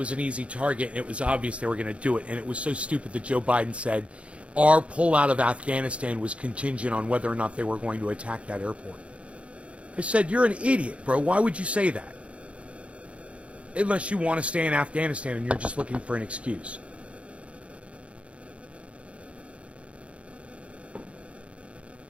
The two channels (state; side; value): late; left; 0.061 ms